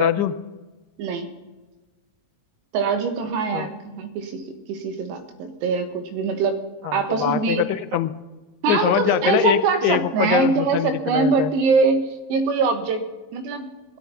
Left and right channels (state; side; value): late; left; 19 ms